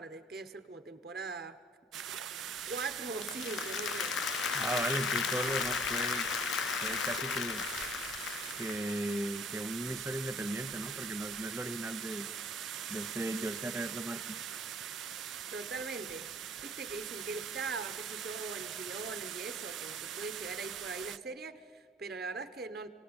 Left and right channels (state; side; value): normal; both; correlation 0.55